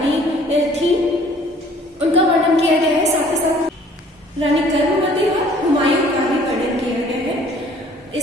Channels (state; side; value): normal; both; correlation 0.55